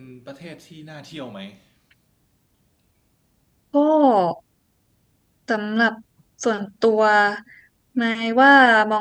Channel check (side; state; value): both; identical; correlation 1.00